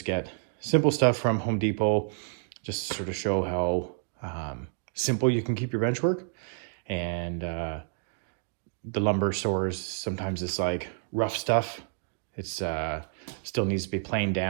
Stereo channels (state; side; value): silent; left; digital silence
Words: get simple stuff from Home Depot, just to sort of show how simple you can keep your bench work. And the lumber stores, sometimes it's like rough stuff. It's still needs to be planed